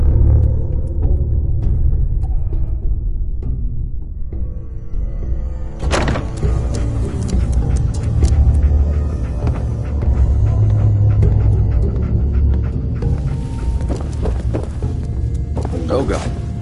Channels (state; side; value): identical; both; correlation 1.00